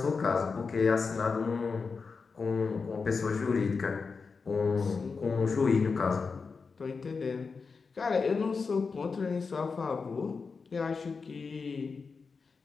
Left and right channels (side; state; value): right; quieter; 4.9 dB